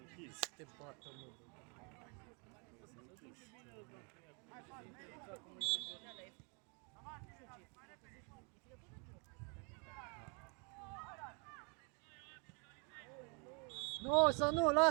închis. Te bată, mă. S-a închis. Nu, să nu,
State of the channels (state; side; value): quieter; left; 35.3 dB